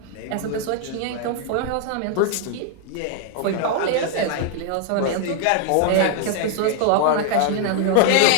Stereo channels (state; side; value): different; both; correlation 0.00